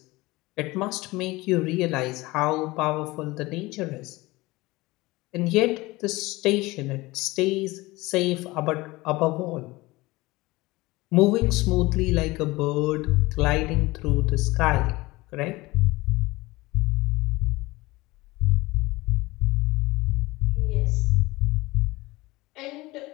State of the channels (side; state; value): right; quieter; 21.0 dB